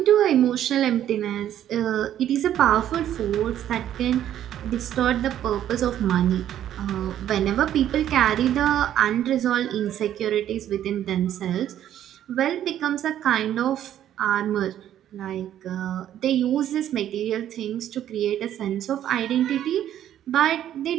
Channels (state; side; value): quieter; left; 11.2 dB